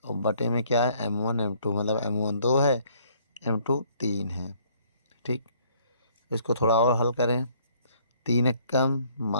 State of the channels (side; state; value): both; inverted; correlation -0.63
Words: और बटे में क्या है, m1 m2, मतलब m1 2 है, m2 3 है, ठीक। इसको थोड़ा और हल करें, 3 एक कम